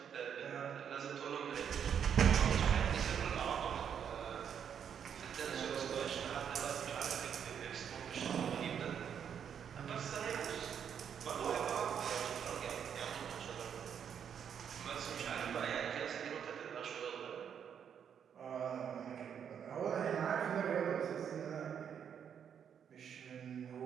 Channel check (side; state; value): left; quieter; 8.1 dB